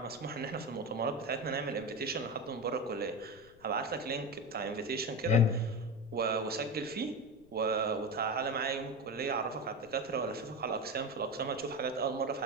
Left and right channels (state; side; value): noise; left; rumble, 26 dB below the sound